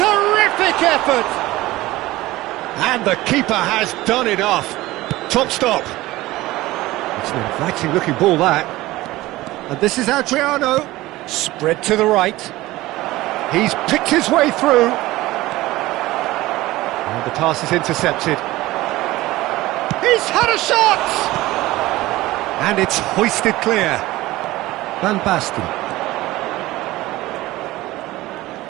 effort! And the keeper has done enough. Top stop. It's an inviting looking ball, that. And this is Adriano. Spread to the right. He's picked his way through. And the pass is intercepted. He's had a shot! And it's hoisted clear. Van Basten.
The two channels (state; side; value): quieter; left; 18.0 dB